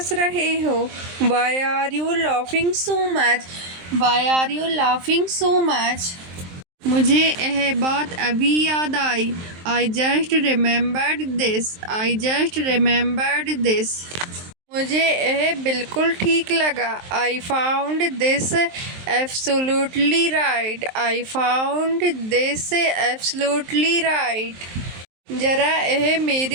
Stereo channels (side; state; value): left; late; 23 ms